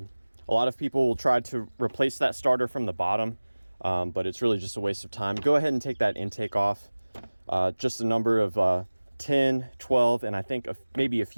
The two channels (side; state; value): both; inverted; correlation -1.00